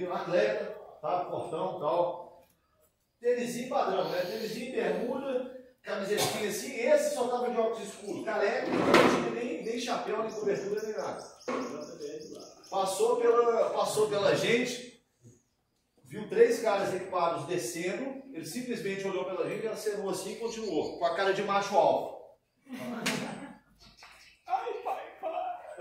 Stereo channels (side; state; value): both; identical; correlation 1.00